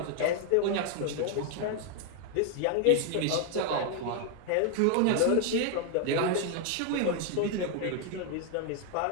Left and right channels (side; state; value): both; different; correlation 0.00